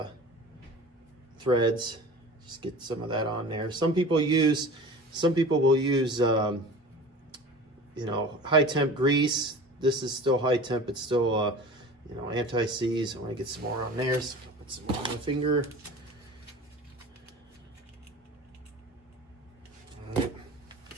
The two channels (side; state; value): both; normal; correlation 0.38